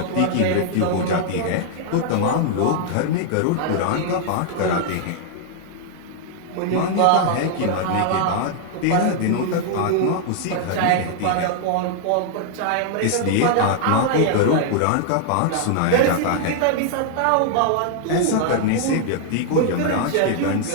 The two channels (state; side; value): different; both; correlation 0.00